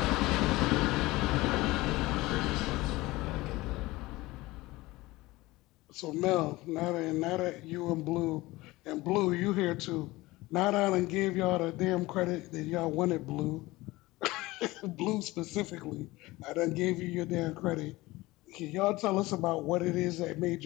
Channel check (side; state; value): right; quieter; 20.0 dB